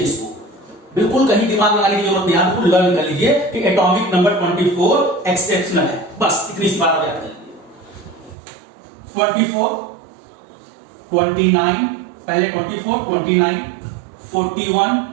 इसको, बिल्कुल कहीं दिमाग लगाने की जरूरत नहीं, आपको लर्न कर लीजिए कि एटॉमिक नंबर 24 एक्सेप्शनल है। बस इतनी सी बात आप याद कर लीजिए। 24, 29, पहले 24, 29,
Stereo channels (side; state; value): left; drops out; at 8.3 s